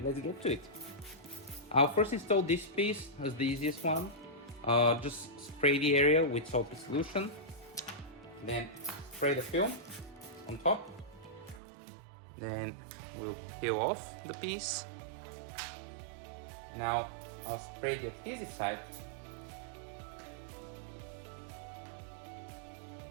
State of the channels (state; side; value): drops out; left; at 11.6 s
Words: let's get to it. I'll first install this piece as the easiest one. Just spray the area with soapy solution, then spray the film on top. Then we'll peel off the piece. Now I'll spray the adhesive side,